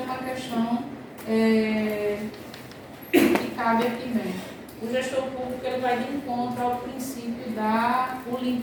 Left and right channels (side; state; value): both; identical; correlation 1.00